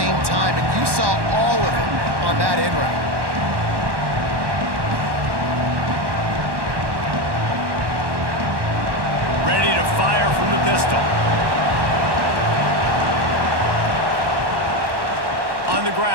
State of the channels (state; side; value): late; left; 1.1 ms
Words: time, and you saw all of it on that in route. Ready to fire from the pistol. On the